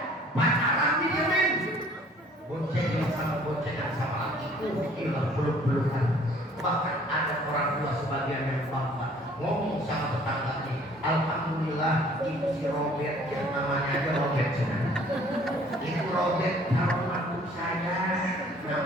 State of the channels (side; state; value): both; normal; correlation 0.55